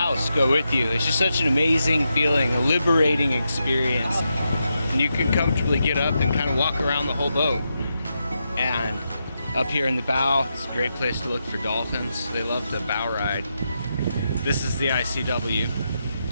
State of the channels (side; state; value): both; inverted; correlation -0.85